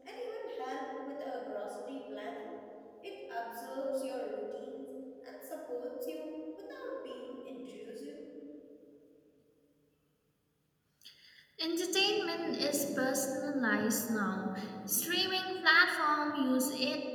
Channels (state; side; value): identical; both; correlation 1.00